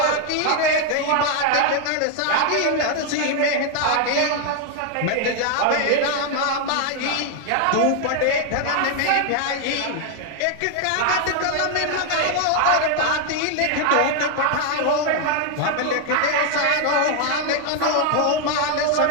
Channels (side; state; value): both; different; correlation 0.00